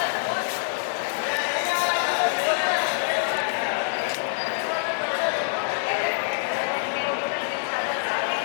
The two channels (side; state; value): right; silent; 61 dB below the other